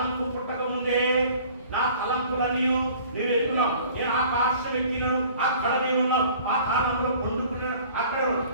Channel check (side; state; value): both; inverted; correlation -0.50